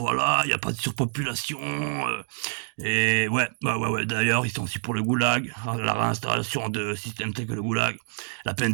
il y a pas de surpopulation, et ouais, d'ailleurs ils sont aussi pour le goulag, la réinstallation de systèmes tels que le goulag, la peine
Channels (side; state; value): left; silent; digital silence